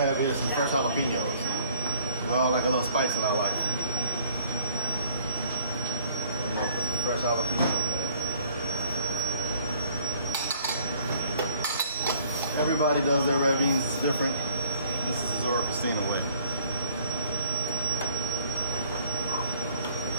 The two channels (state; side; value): inverted; both; correlation -0.58